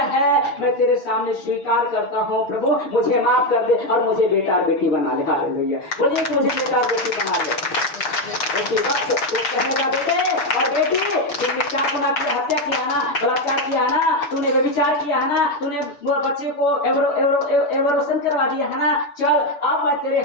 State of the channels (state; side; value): late; right; 6.2 ms